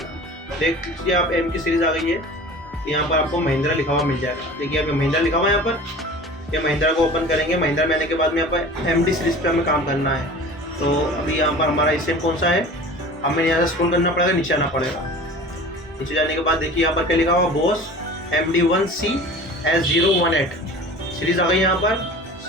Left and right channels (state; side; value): normal; both; correlation 0.40